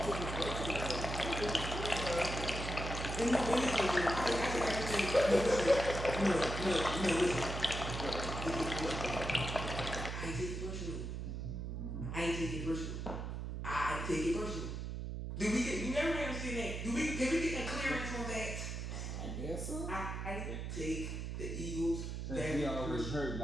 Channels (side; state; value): right; noise; hum, 4 dB below the sound